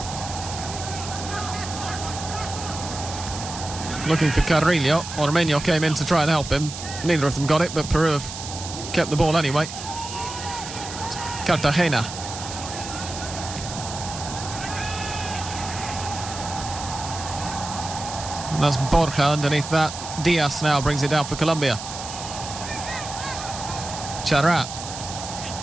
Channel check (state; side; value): noise; right; hiss, 9 dB below the sound